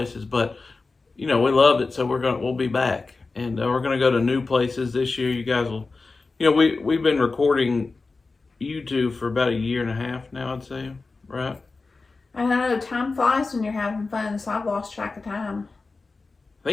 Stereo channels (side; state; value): right; quieter; 3.9 dB